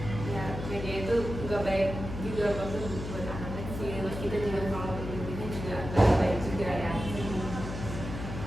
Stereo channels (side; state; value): left; noise; hum, 7 dB below the sound